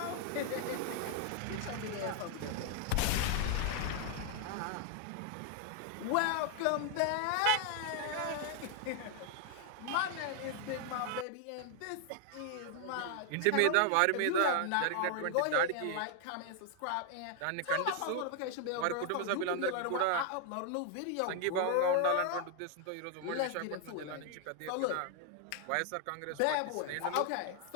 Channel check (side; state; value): both; different; correlation 0.00